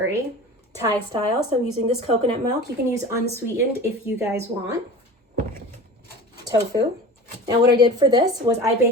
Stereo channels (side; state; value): both; normal; correlation 0.36